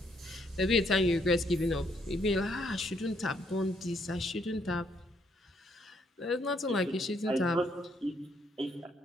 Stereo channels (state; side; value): normal; both; correlation 0.71